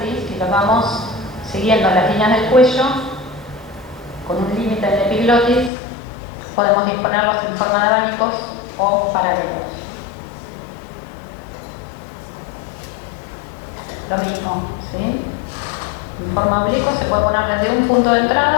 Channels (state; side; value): drops out; right; at 5.7 s